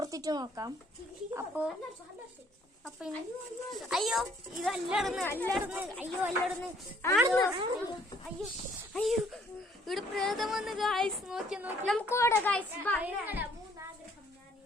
നോക്കാം. അപ്പൊ അയ്യോ, ഇത് അല്ലടന്ന് അയ്യോ അല്ലടന്ന് അയ്യോ അയ്യോ, ഇവിടെ പ്രേതം വന്ന് ഗായ്സ്. നോക്കി നമുക്ക് ഓടാ ഗായ്സ്.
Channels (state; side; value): normal; both; correlation 0.62